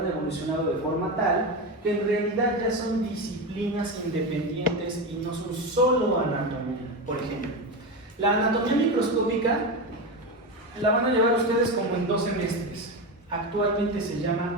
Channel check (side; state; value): both; normal; correlation 0.17